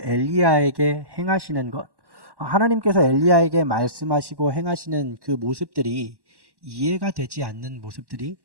엘리야에게 행하시는 것, 하나님께서 엘리야에게 말씀하시고 행하시는 그 모습들이 이해가 되지 않는 모습들이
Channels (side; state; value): left; late; 1.1 ms